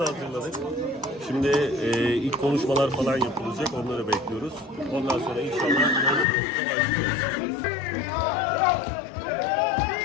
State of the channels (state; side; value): drops out; right; at 6.2 s